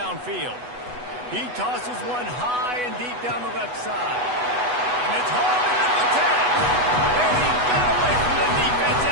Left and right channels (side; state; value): left; late; 8.1 ms